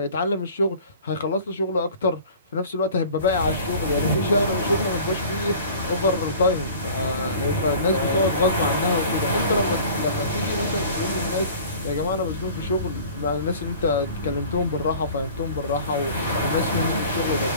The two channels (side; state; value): both; inverted; correlation -0.44